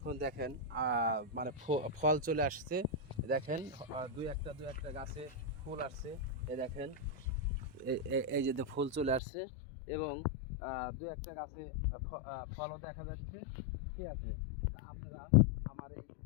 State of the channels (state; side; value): drops out; right; at 9.2 s